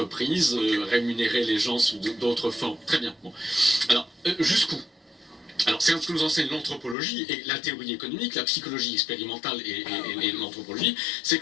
rémunérer les gens sous d'autres formes. Très bien. Bon. Alors, jusqu'où? Alors, c'est ce que nous enseigne l'anthropologie et la théorie économique, la psychologie expérimentale et l'anthropologie, c'est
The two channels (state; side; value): drops out; right; at 7.0 s